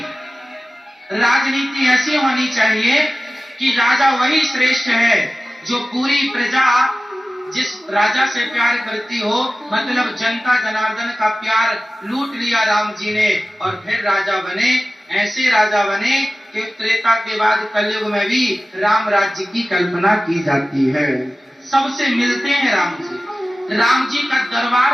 राजनीति ऐसी होनी चाहिए कि राजा वही श्रेष्ठ है जो पूरी प्रजा जिस राजा से प्यार करती हो, मतलब जनता जनार्दन का प्यार लूट लिया राम जी ने, और फिर राजा बने। ऐसे राजा बने कि त्रेता के बाद कलयुग में भी राम राज्य की कल्पना की जाती है। सबसे मिलते हैं राम जी। राम जी का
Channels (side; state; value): both; normal; correlation 0.96